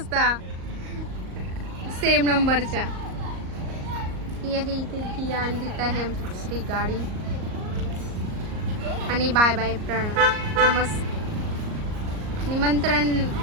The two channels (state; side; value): late; left; 38 ms